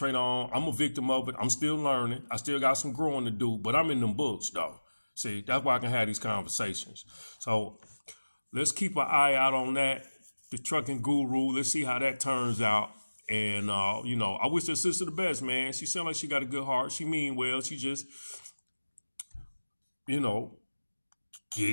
on. I'm a victim of it. I'm still learning. I still got some growing to do, but I'm in them books, though. See, that's why I can have these conversations. So let's keep an eye out on that. The trucking guru. Let's see how that turns out. And, you know, I wish her sister the best, man. She sounds like she got a good heart. She mean well. She just, you know,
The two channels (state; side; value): inverted; both; correlation -1.00